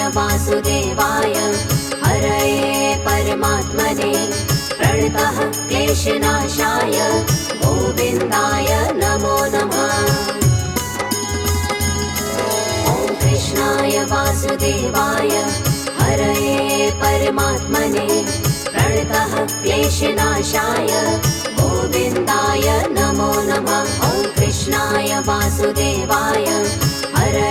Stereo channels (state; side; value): identical; both; correlation 1.00